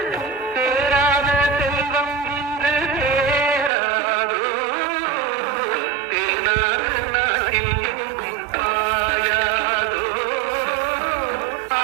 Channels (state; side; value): drops out; left; at 3.7 s